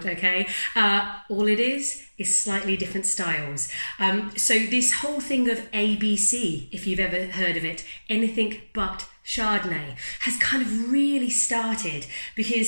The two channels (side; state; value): both; inverted; correlation -1.00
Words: okay? All it is slightly different styles. So this whole thing of ABC, if you've ever heard of it, anything but Chardonnay, has kind of really started